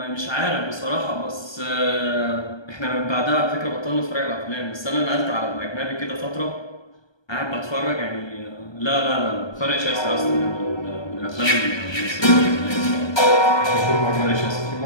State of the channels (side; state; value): right; late; 1.2 ms